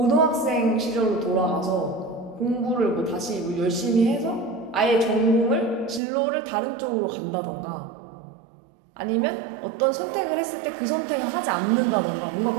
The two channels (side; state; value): left; drops out; at 6.0 s